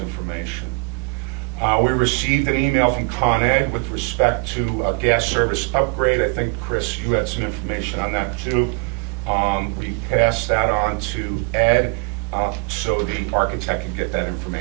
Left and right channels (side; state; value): left; quieter; 35.8 dB